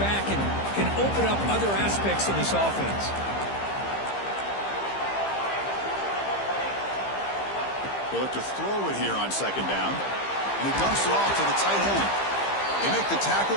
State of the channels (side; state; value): right; late; 15 ms